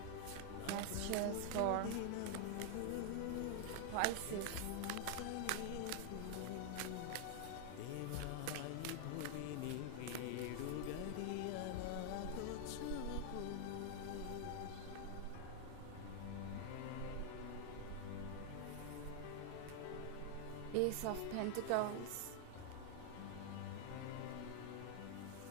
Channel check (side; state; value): both; different; correlation 0.00